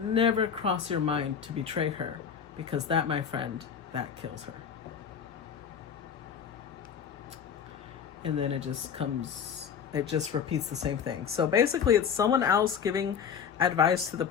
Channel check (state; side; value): quieter; right; 7.4 dB